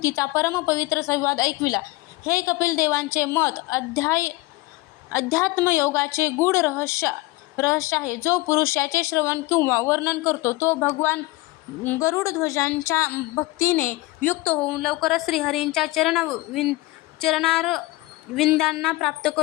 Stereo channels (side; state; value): right; quieter; 20.6 dB